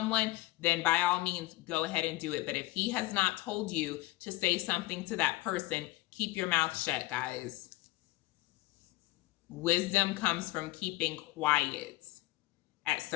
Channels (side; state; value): right; quieter; 18.8 dB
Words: then by all means, go ahead and do it. But if he has not told you to say something to that person, keep your mouth shut, guys. Wisdom comes from keeping quiet at